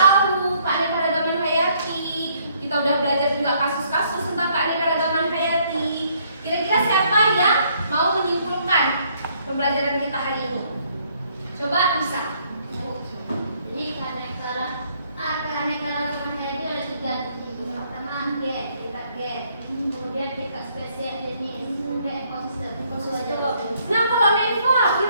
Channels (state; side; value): inverted; both; correlation -0.67